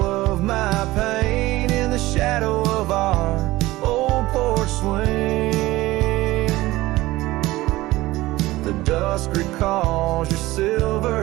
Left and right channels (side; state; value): left; quieter; 18.3 dB